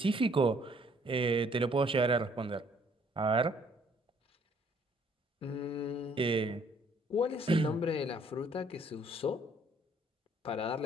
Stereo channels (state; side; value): normal; both; correlation 0.63